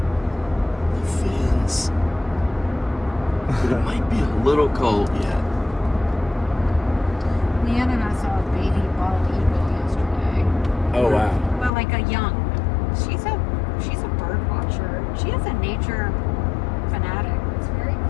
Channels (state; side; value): drops out; right; at 11.7 s